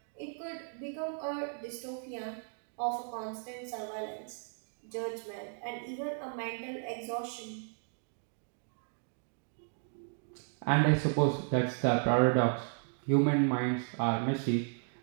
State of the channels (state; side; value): silent; left; 55 dB below the other